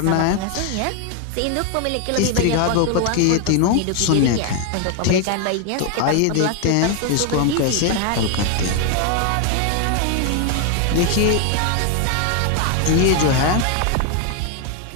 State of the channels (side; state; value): both; different; correlation 0.01